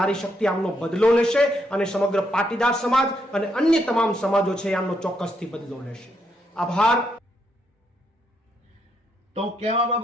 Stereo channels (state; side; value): normal; both; correlation 0.77